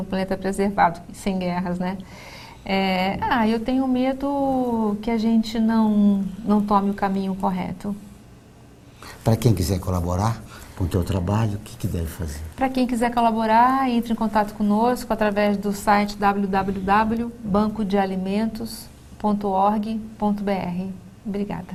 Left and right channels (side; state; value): both; identical; correlation 1.00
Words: planeta preservado, sem guerras, né? Eu tenho medo que a gente não tome o caminho correto. Para quem quiser colaborar com o teu trabalho, o que deve fazer? Para quem quiser colaborar, entre em contato conosco através do site www.bancodealimentos.org.br.